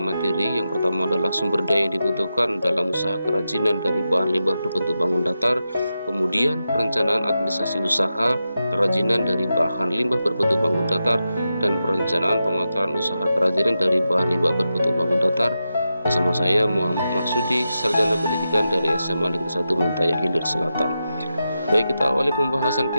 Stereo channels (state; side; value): inverted; both; correlation -0.89